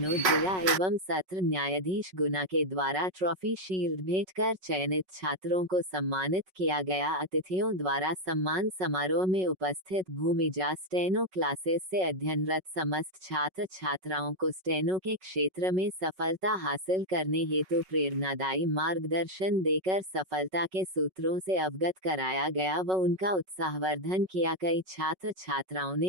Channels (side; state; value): left; late; 5.4 ms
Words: जिला एवं सत्र न्यायाधीश गुना के द्वारा ट्रॉफी शील्ड भेंट कर चयनित छात्रों को सम्मानित किया गया। अतिथियों द्वारा सम्मान समारोह में उपस्थित भूमिजा स्टेनो क्लासेस से अध्ययनरत समस्त छात्र छात्राओं को स्टेनो के क्षेत्र में सफलता हासिल करने हेतु प्रेरणादायी मार्गदर्शन देकर सफलता के सूत्रों से अवगत कराया गया व उनका उत्साहवर्धन किया। कई छात्र छात्राओं